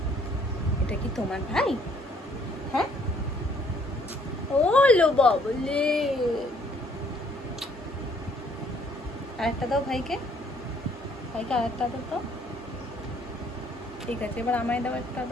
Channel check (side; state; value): both; normal; correlation 0.63